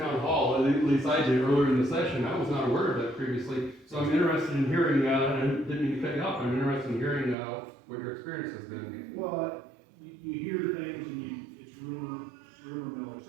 hall, at least I did earlier in the session. I was not aware of that previously. So I'm interested in hearing, and I didn't mean to cut you off, I'm interested in hearing what your experience has been. well, you hear things and it's rumor mill, et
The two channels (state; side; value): drops out; left; at 7.4 s